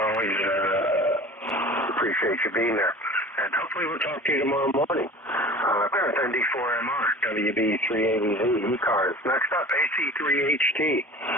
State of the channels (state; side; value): normal; both; correlation 0.40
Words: always, appreciate you being there. And hopefully we'll talk to you tomorrow morning. With ND4MR, WB3AVZ, ECARS. Next up, AC3HT.